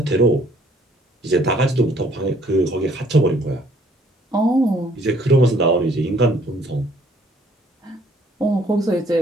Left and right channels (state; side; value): normal; both; correlation 0.62